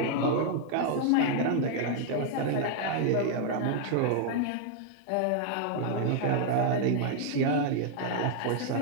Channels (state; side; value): different; both; correlation 0.00